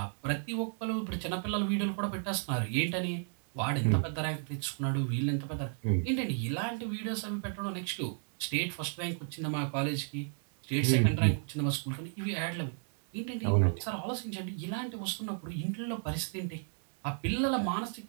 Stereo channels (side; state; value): left; silent; 55 dB below the other